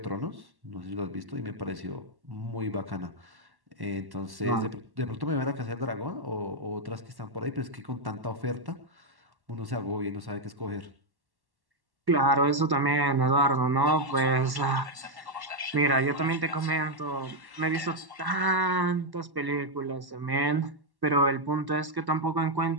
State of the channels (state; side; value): late; left; 1.1 ms